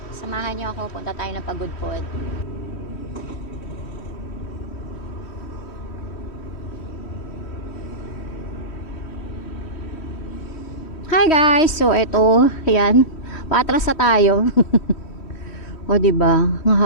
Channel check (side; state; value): right; late; 3.1 ms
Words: samahan niyo ako. Punta tayo ng Pagudpud. Hi guys! So, ito, ayan. Paatras na tayo. O, diba? Ang